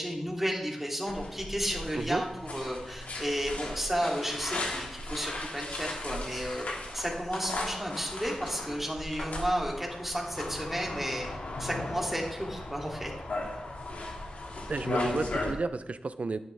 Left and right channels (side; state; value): both; normal; correlation 0.88